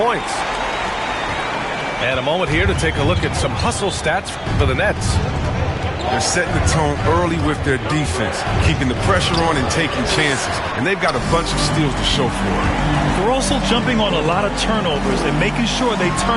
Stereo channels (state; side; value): identical; both; correlation 1.00